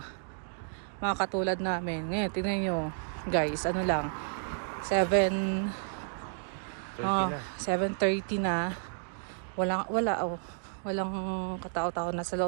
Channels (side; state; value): left; silent; digital silence